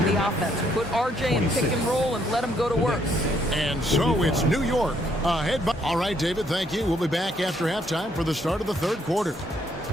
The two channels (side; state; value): both; normal; correlation 0.70